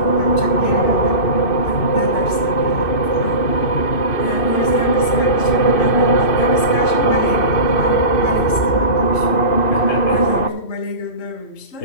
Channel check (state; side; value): late; right; 2.6 ms